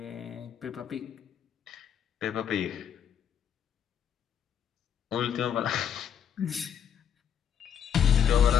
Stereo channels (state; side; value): quieter; right; 8.5 dB